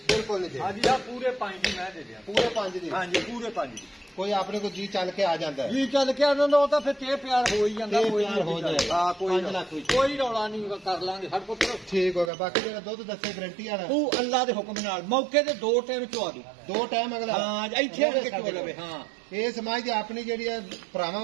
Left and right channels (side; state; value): left; drops out; at 12.3 s